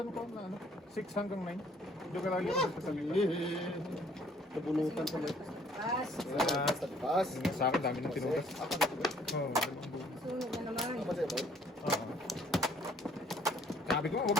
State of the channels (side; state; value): both; normal; correlation 0.60